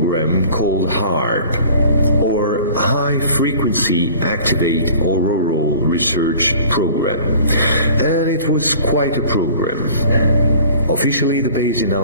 called HAARP, or High Frequency Activate Auroral Research Program. And it was quite a program. Officially, the base in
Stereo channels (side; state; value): both; inverted; correlation -0.47